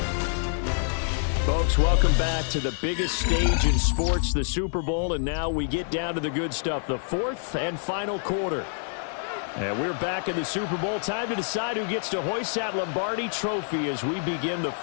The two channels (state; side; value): silent; right; digital silence